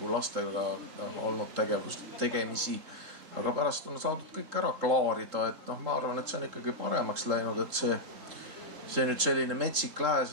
lastega olnud tegemisi. Aga pärast on saadud kõik ära klaarida, et ma arvan, et see on ikkagi paremaks läinud, et see nüüd selline metsik lääs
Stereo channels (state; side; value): late; left; 3.7 ms